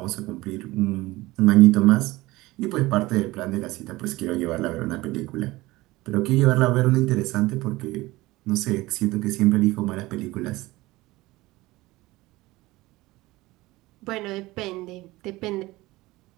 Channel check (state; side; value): quieter; left; 19.6 dB